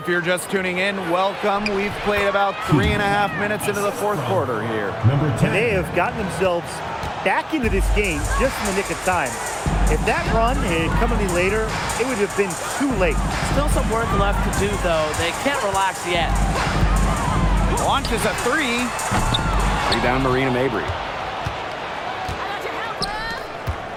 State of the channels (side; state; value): both; identical; correlation 1.00